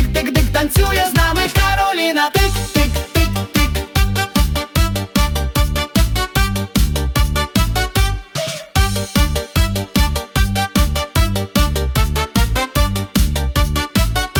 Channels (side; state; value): both; identical; correlation 1.00